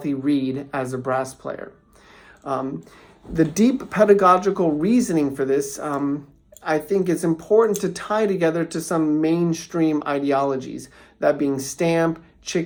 reed as a brass player. The deep pedagogical reasoning for this, I think it's important to tie together to some mainstream ideologies, that being Stamp,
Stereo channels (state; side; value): identical; both; correlation 1.00